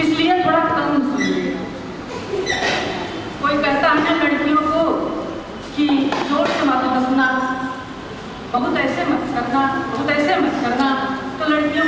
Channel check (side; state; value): both; identical; correlation 1.00